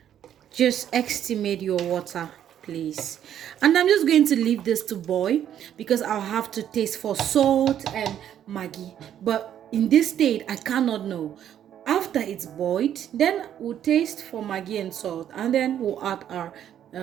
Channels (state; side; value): quieter; left; 10.2 dB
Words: Just estimate your water, please. And I'm just going to leave this to boil because I'll have to taste for salt and Maggi. But in this state, I cannot know. After it's boiled, then we'll taste for Maggi and salt, and then we'll add our